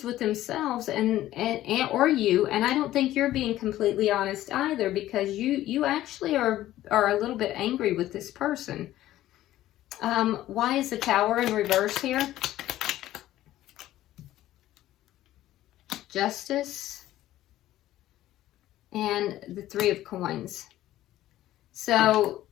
with themselves or you. And I don't think you're being completely honest either, because you actually are a little bit angry with this person. Why is the Tower in reverse here? Justice and the Three of Coins. So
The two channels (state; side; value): quieter; right; 14.2 dB